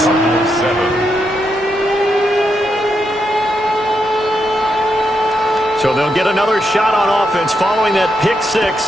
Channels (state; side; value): normal; both; correlation 0.82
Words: So they'll get another shot on offense following that pick